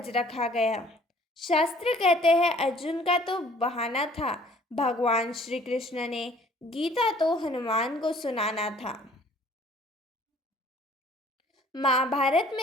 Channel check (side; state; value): both; normal; correlation 0.55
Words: रखा गया। शास्त्र कहते हैं अर्जुन का तो बहाना था, भगवान श्री कृष्ण ने गीता तो हनुमान को सुनाना था। महाभारत